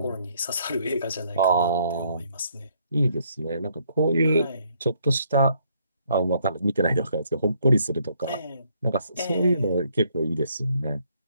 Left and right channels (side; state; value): both; inverted; correlation -0.69